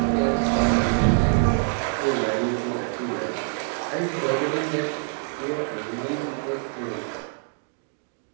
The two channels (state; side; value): silent; left; 62 dB below the other